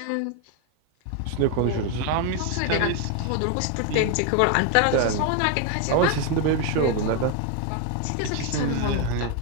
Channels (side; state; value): both; different; correlation 0.01